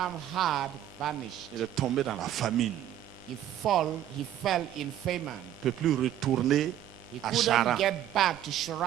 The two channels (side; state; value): left; quieter; 11.5 dB